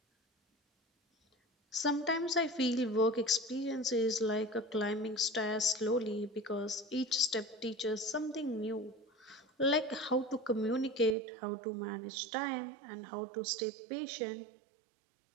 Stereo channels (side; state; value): left; drops out; at 11.2 s